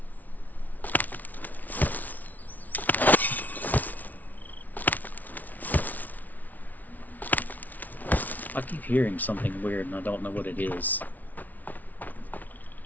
I keep hearing something weird and I don't know what it is.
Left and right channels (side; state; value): right; late; 0.078 ms